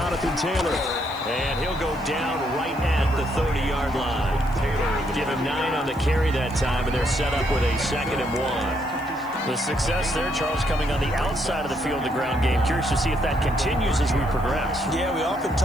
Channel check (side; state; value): left; noise; hiss, 25 dB below the sound